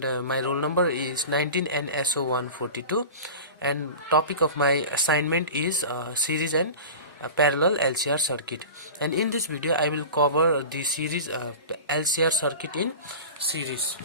my roll number is 19 NSO 142, and topic of my assignment is series and parallel LCR circuit. And in this video I will cover the series LCR circuit in series.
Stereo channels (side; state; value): both; inverted; correlation -0.33